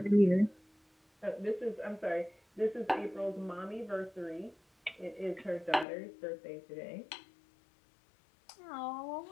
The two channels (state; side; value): drops out; right; at 5.9 s